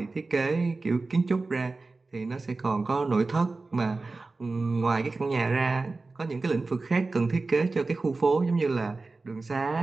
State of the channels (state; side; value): quieter; left; 3.6 dB